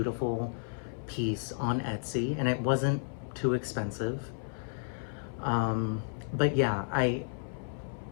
piece on Etsy, and it wasn't too expensive. But yeah, I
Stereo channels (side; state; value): right; silent; 56 dB below the other